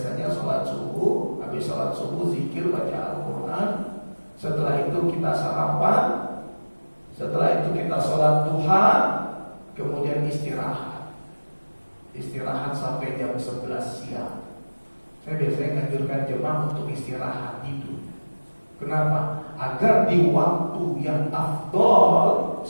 sholat subuh, habis sholat subuh zikir, baca Al-Quran. Setelah itu kita sarapan. Setelah itu kita sholat duha. Kemudian istirahat. Istirahat sampai jam 11 siang. Saya biasanya menganjurkan jemaah untuk istirahat tidur. Kenapa? Agar di waktu yang afdol,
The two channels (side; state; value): both; inverted; correlation -1.00